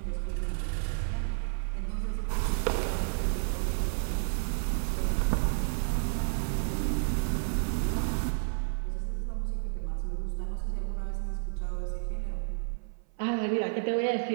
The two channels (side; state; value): left; silent; 56 dB below the other